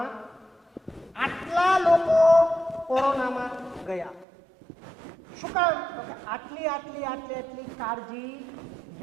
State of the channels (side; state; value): left; drops out; at 4.2 s